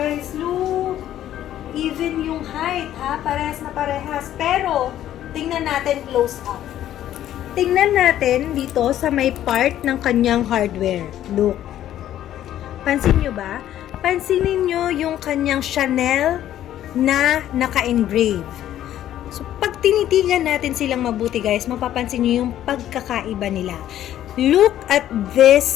Look! Even yung height, ha? Parehas na parehas. Pero, tingnan natin close up. Tingnan natin dito sa may part ng kanyang hardware. Look. Pansin nyo ba? Pansinin nyo yung kanyang Chanel na naka-engrave. So, pag tinitigan natin silang mabuti guys, mapapansin nyo yung pagkakaiba nila. Look at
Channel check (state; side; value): quieter; right; 12.0 dB